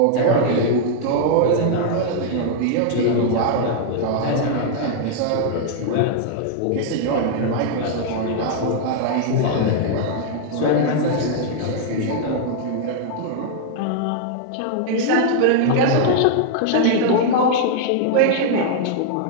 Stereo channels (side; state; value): both; different; correlation -0.01